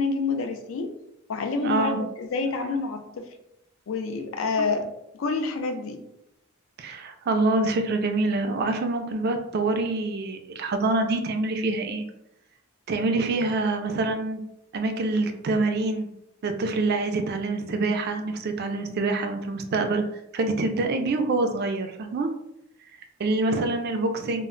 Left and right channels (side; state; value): both; normal; correlation 0.27